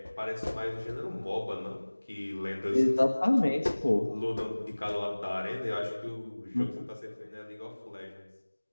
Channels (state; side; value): inverted; both; correlation -1.00